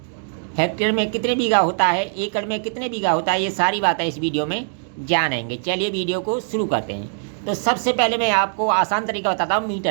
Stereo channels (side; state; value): left; silent; digital silence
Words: हेक्टेयर में कितने बीघा होता है, एकड़ में कितने बीघा होता है, ये सारी बातें इस वीडियो में जानेंगे। चलिए वीडियो को शुरू करते हैं। तो सबसे पहले मैं आपको आसान तरीका बताता हूँ